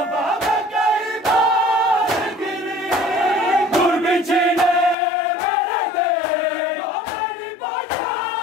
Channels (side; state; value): right; drops out; at 5.0 s